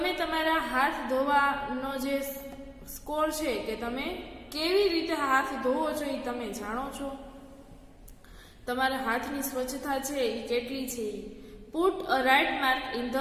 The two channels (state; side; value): identical; both; correlation 1.00